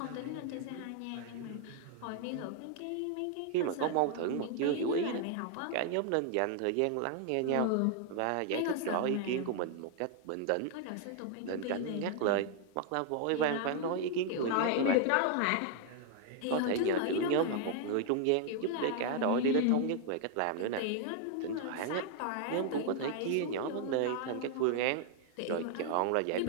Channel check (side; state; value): both; different; correlation 0.00